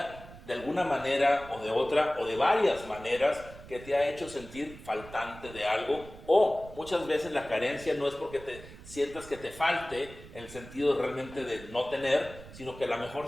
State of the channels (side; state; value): right; noise; rumble, 17 dB below the sound